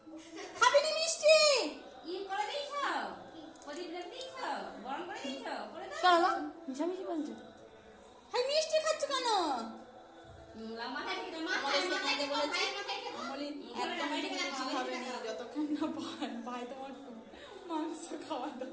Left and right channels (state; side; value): identical; both; correlation 1.00